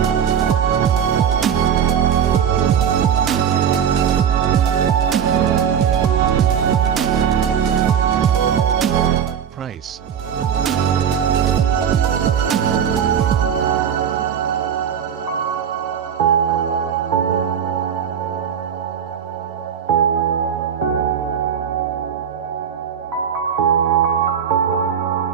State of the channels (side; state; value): left; quieter; 8.2 dB